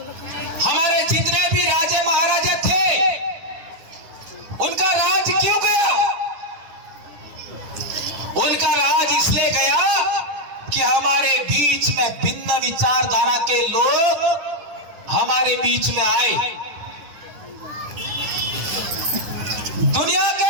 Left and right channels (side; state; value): left; late; 9.9 ms